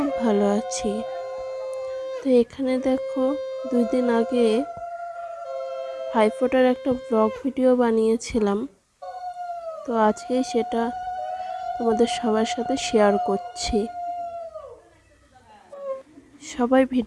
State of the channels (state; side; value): identical; both; correlation 1.00